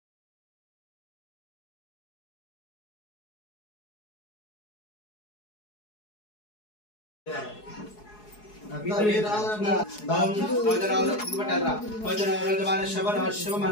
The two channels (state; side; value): late; right; 4.7 ms